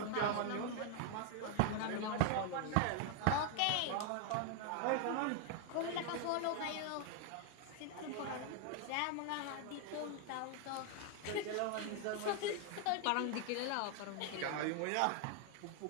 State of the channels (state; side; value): different; both; correlation 0.00